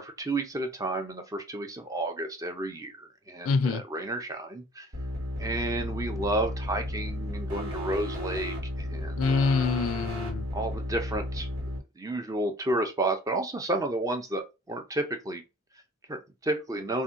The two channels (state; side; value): normal; both; correlation 0.53